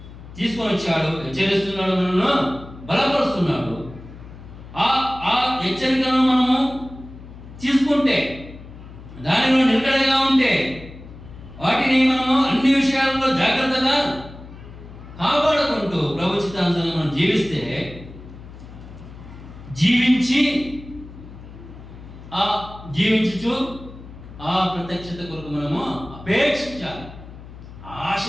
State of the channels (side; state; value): left; noise; hum, 16 dB below the sound